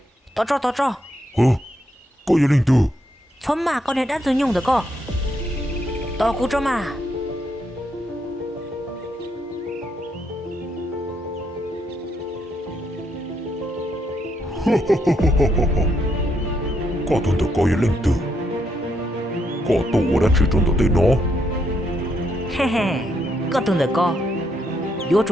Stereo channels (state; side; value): normal; both; correlation 0.77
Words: 到这，có gì linh tử? 村嘛，con này đã dùng nhung được co. Tao cú cho mà. Có tuần tự có gì linh tử? Có tụ đã chỉ trong tới nó. He he, có tuần được co. Vô